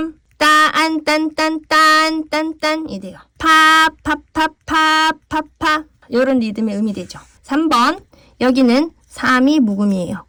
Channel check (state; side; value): identical; both; correlation 1.00